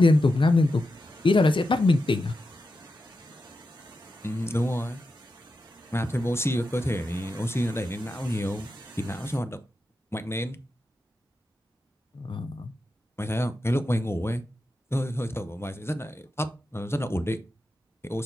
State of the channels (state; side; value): normal; both; correlation 0.89